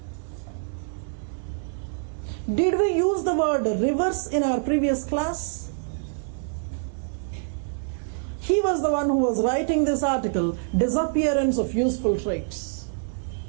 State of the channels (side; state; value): left; silent; 61 dB below the other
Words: Did we use the word reverse in our previous class? He was the one who was writing this article, disappearance of useful traits.